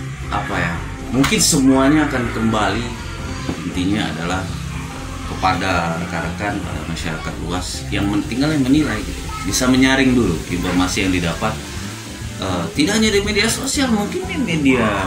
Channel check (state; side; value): identical; both; correlation 1.00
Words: mungkin semuanya akan kembali, intinya adalah kepada rekan-rekan, pada masyarakat luas yang tinggal yang menilai gitu. Bisa menyaring dulu informasi yang didapat, tidak hanya di media sosial, mungkin di media